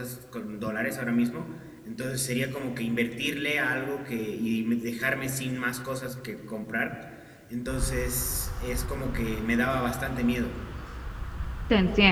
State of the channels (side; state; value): both; identical; correlation 1.00